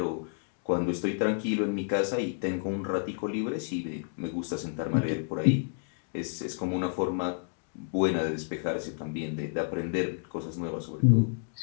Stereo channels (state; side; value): silent; right; digital silence